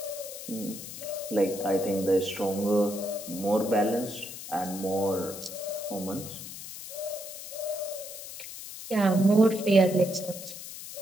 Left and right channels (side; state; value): left; noise; hiss, 11 dB below the sound